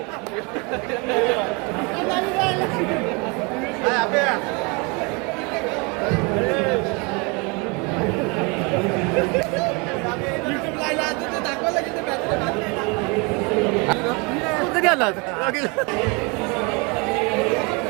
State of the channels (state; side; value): quieter; left; 29.9 dB